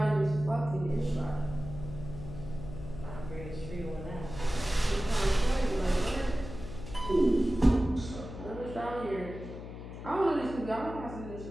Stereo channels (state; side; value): noise; left; hum, 11 dB below the sound